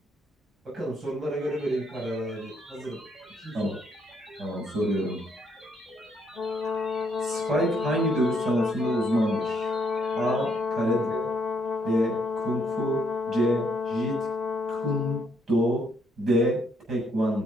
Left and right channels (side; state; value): both; normal; correlation 0.72